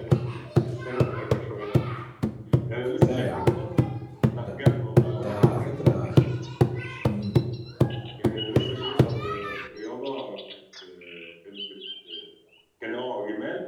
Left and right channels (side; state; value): both; identical; correlation 1.00